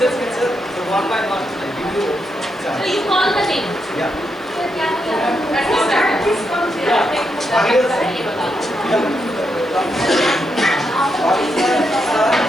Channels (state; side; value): noise; left; hiss, 29 dB below the sound